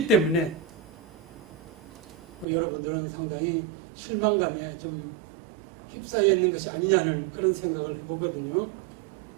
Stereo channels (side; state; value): left; drops out; at 2.5 s